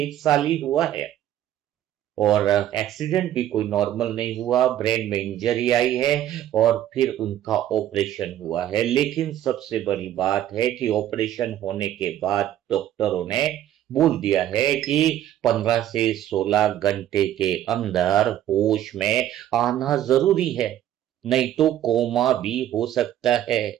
साल ही हुआ है, और एक्सीडेंट भी कोई नॉर्मल नहीं हुआ, ब्रेन में इंजरी आई है और फिर उनका ऑपरेशन हुआ है। लेकिन सबसे बड़ी बात है कि ऑपरेशन होने के बाद डॉक्टरों ने बोल दिया है कि 15 से 16 घंटे के अंदर होश में आना जरूरी है, नहीं तो कोमा भी हो सकता है।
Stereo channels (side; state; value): left; quieter; 12.0 dB